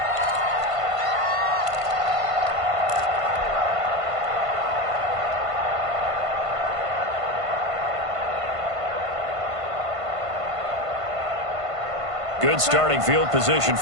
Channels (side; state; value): left; late; 1.5 ms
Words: Good starting field position